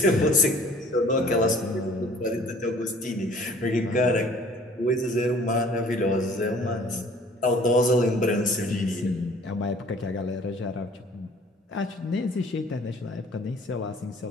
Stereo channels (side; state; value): both; normal; correlation 0.53